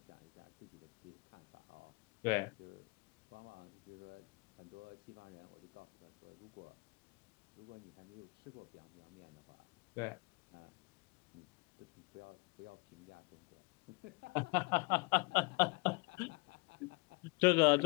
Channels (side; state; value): right; quieter; 28.3 dB